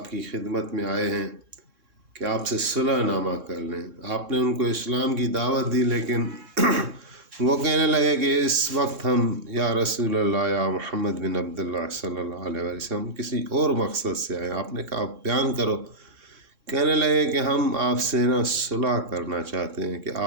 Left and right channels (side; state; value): left; late; 3.6 ms